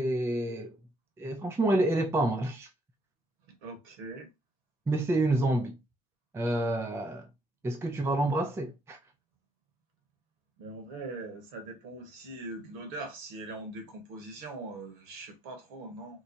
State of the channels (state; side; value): normal; both; correlation 0.74